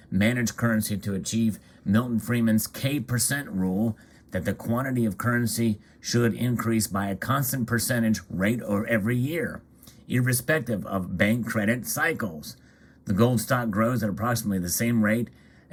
managed currency to achieve Milton Friedman's K% rule that the quantity of currency should increase by a constant percentage rate or every year, irrespective of bank credit cycles. The gold stock grows at approximately the same rate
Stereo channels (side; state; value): both; identical; correlation 1.00